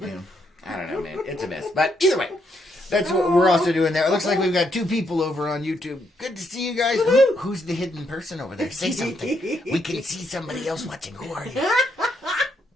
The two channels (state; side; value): normal; both; correlation 0.76